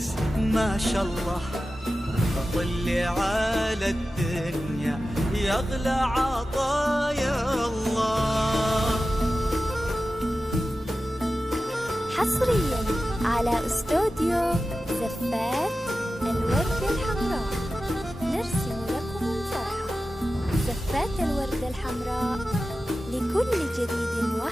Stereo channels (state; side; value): normal; both; correlation 0.94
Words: ما شاء الله طلي على الدنيا يغلى عطايا الله. حصريا على استوديو زفات الوردة الحمراء نرسم لكم الفرحة. زفات الوردة الحمراء لكل جديد